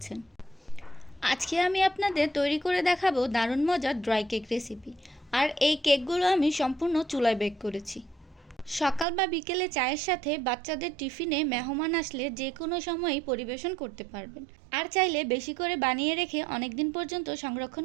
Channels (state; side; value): drops out; left; at 9.1 s